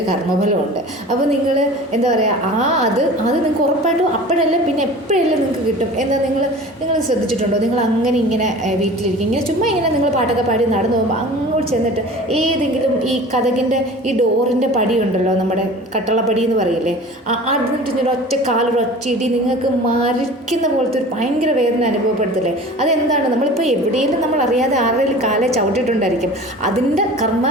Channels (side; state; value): both; normal; correlation 0.40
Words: കർമ്മബലമുണ്ട്. അപ്പോൾ നിങ്ങൾ എന്താ പറയുക, അത് നിങ്ങൾക്ക് ഉറപ്പായിട്ടും അപ്പോഴല്ല പിന്നെ എപ്പോഴെല്ലാം നിങ്ങൾക്ക് കിട്ടും. എന്താ നിങ്ങൾ ശ്രദ്ധിച്ചിട്ടുണ്ടോ? നിങ്ങൾ അങ്ങനെ ഇങ്ങനെ വീട്ടിലിരിക്കും, ഇങ്ങനെ ചുമ്മാ ഇങ്ങനെ നിങ്ങൾ പാട്ടൊക്കെ പാടി നടന്നു പോകുമ്പോൾ അങ്ങോട്ട് ചെന്നിട്ട് ഏതെങ്കിലും ഈ കതകിൻ്റെ ഈ ഡോറിൻ്റെ പടി ഉണ്ടല്ലോ, നമ്മുടെ കട്ടളപ്പടി എന്ന് പറയില്ലേ, അതിട്ട് ഒറ്റ കാലൊരൊറ്റ ഇടി നിങ്ങൾക്ക് മരിക്കുന്ന പോലത്തെ ഒരു ഭയങ്കര വേദന അനുഭവപ്പെടുത്തില്ലേ? അതെന്താണ്? നമ്മളിപ്പോൾ എവിടെയെങ്കിലും നമ്മൾ അറിയാതെ ആരുടെയും കാലെ ചവിട്ടിയിട്ടുണ്ടായിരിക്കും. അതിൻ്റെ കർമ്മ